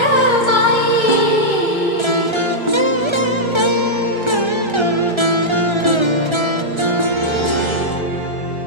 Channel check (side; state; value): left; late; 1.3 ms